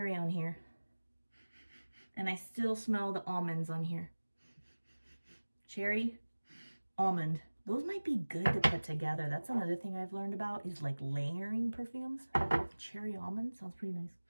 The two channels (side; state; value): both; inverted; correlation -1.00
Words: on here. And I still smell the almonds on here. Cherry, almond. Those might be good to put together. That's another thing I've learned about is like layering perfumes. Cherry almond sounds pretty nice.